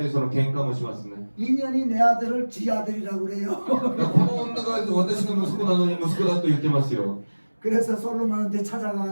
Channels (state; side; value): inverted; both; correlation -1.00